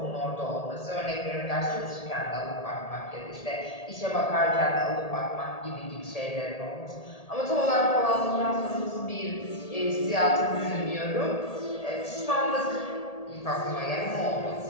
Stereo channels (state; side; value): late; right; 1.8 ms